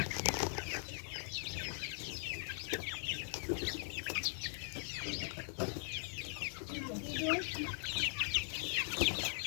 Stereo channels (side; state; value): right; silent; 51 dB below the other